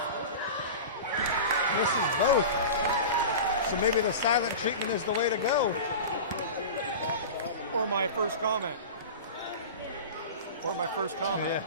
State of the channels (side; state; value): both; inverted; correlation -0.30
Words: Misses both. So maybe the silent treatment is the way to go. Or my first comment. Yeah.